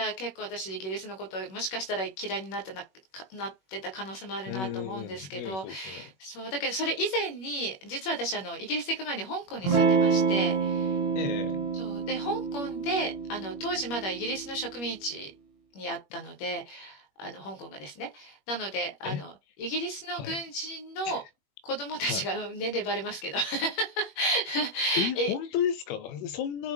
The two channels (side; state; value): right; late; 21 ms